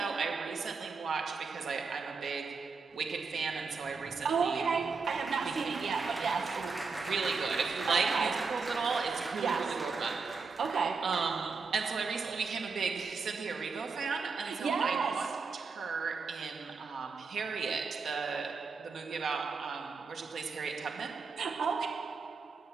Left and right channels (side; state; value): left; quieter; 4.7 dB